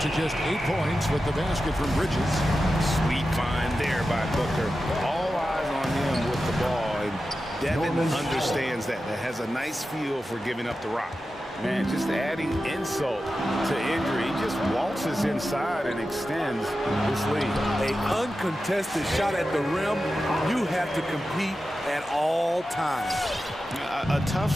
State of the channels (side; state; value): both; normal; correlation 0.92